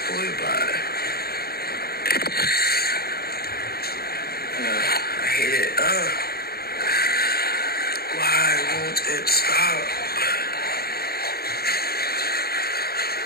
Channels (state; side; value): late; right; 0.45 ms